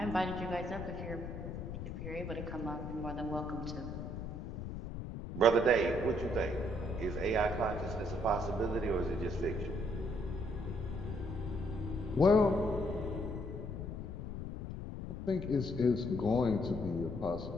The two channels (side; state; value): left; noise; rumble, 7 dB below the sound